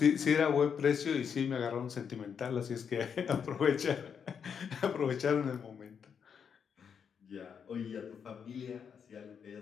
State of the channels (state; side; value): quieter; right; 7.1 dB